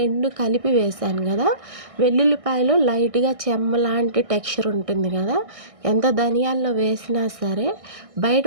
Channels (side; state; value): left; late; 1.6 ms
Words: కలిపి వేసాను కదా, వెల్లుల్లిపాయలో లైట్గా చెమ్మ లాంటి టెక్స్చర్ ఉంటుంది కదా, ఎంత ధనియాల్లో వేసినా సరే బయట